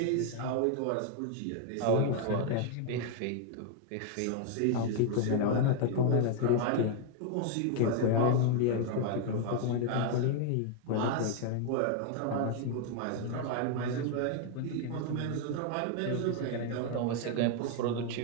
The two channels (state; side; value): different; both; correlation 0.00